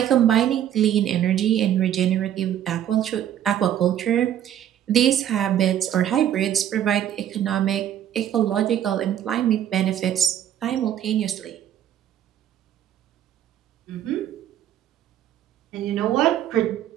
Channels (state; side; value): quieter; left; 10.8 dB